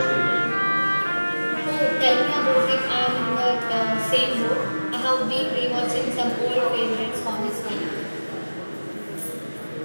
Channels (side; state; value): both; inverted; correlation -1.00